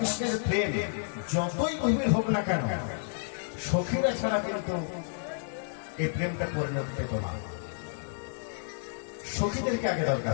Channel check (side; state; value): right; silent; 57 dB below the other